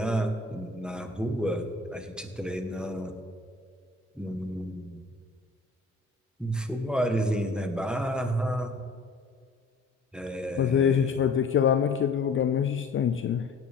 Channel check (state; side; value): quieter; right; 3.8 dB